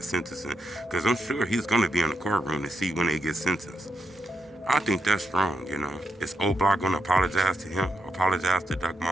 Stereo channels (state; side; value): normal; both; correlation 0.83